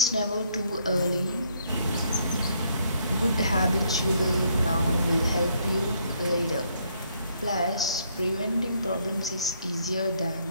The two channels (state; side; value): inverted; both; correlation -0.70